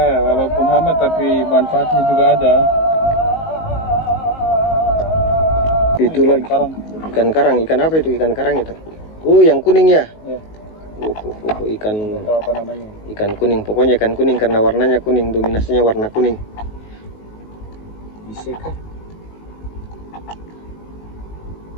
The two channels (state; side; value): late; right; 19 ms